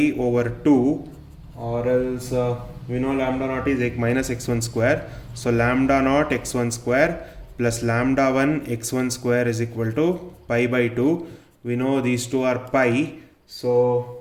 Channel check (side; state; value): both; identical; correlation 1.00